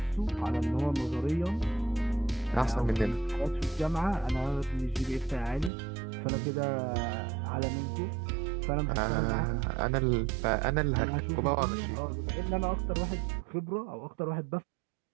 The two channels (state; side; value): drops out; left; at 5.7 s